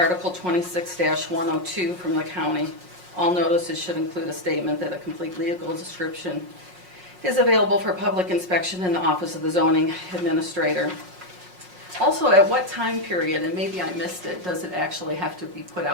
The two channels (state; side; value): late; left; 5.5 ms